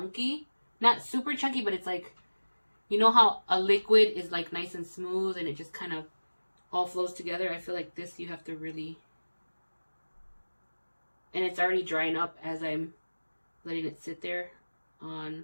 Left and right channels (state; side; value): inverted; both; correlation -1.00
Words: Not super chunky, but it's like, you know how a liquid is like nice and smooth and it just kind of all flows together? I feel like this you have to really, and it's already drying up as I'm letting it sit there